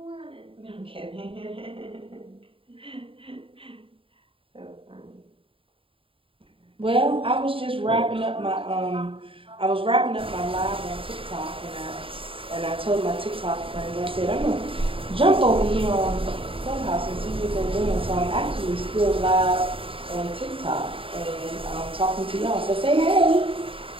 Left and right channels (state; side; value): late; left; 0.26 ms